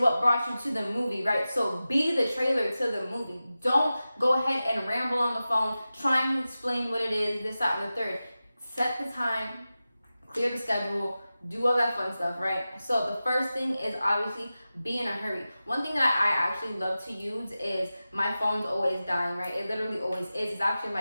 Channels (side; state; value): both; inverted; correlation -0.94